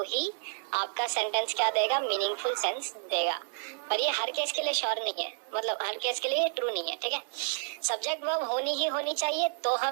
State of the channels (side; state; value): left; silent; digital silence